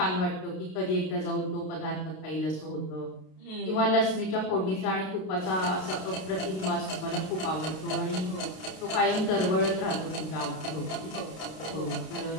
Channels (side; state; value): right; late; 32 ms